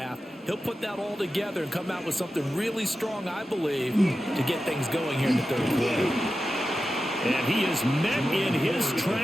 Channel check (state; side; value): normal; both; correlation 0.92